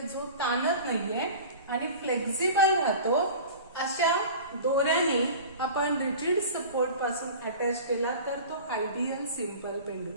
जो ताणत नाहीये आणि फ्लेक्झिबल राहतो अशा दोऱ्याने आपण रिजिड सपोर्ट पासून अटॅच केला तर तो आयडियल सिंपल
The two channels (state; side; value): inverted; both; correlation -0.37